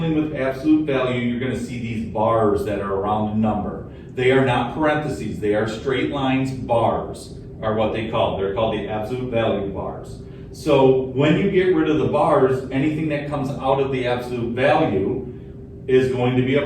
with absolute value, you're going to see these bars that are around a number. They are not parentheses, they are straight lines. Bars are what they're called the absolute value bars. So when you get rid of the bars, anything that comes out of the absolute value is going to be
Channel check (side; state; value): both; identical; correlation 1.00